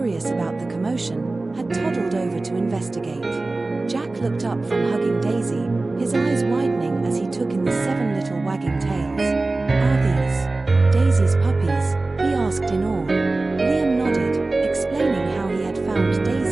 about the commotion, had toddled over to investigate. Jack looked up from hugging Daisy, his eyes widening as he took in the 7 little wagging tails. "Are these Daisy's puppies?" he asked in awe. Liam nodded, explaining how he had found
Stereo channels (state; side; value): quieter; left; 3.2 dB